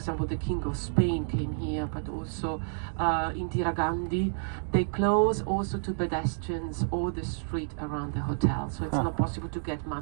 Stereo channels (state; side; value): silent; left; digital silence